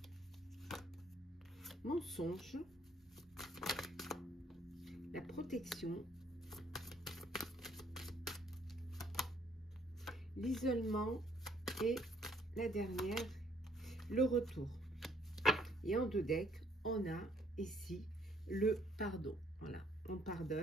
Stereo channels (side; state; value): both; normal; correlation 0.65